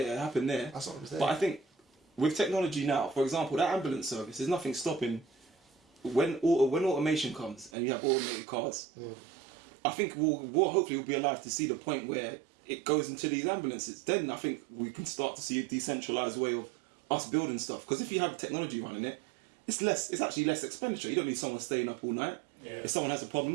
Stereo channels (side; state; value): left; drops out; at 7.7 s